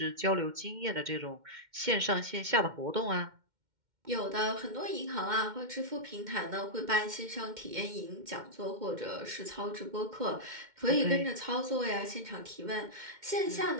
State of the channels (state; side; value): late; left; 2.1 ms